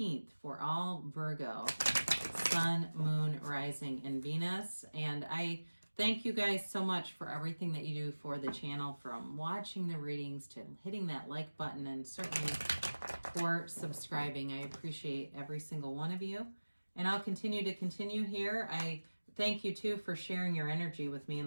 for all Virgo, Sun, Moon, Rising, and Venus. And I thank you guys so much for everything that you do for the channel, from watching the readings to hitting that like button, and certainly for subscribing. I appreciate every single one of you. And I'll continue here. I thank you too for sharing your energy with me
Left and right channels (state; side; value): inverted; both; correlation -1.00